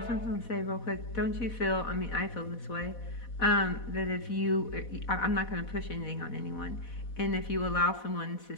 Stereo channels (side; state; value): right; late; 4.1 ms